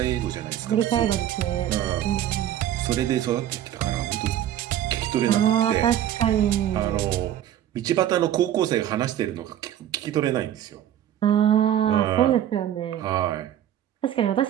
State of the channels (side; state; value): left; quieter; 11.3 dB